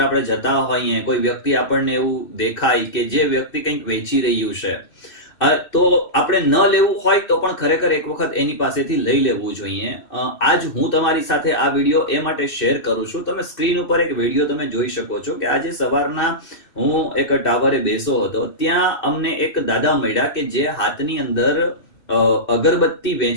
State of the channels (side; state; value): right; late; 2.6 ms